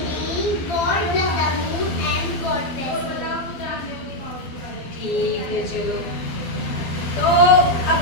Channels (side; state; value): right; late; 12 ms